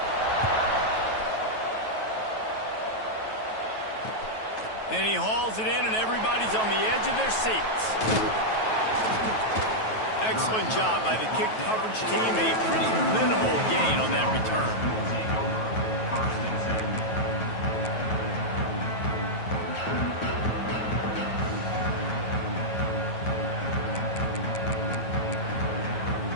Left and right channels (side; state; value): right; late; 9.2 ms